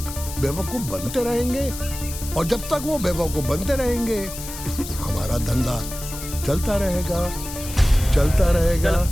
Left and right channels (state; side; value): noise; left; hiss, 10 dB below the sound